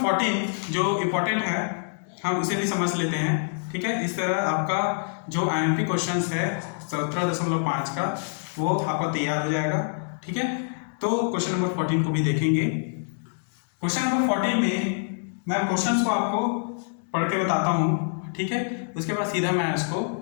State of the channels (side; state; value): right; silent; digital silence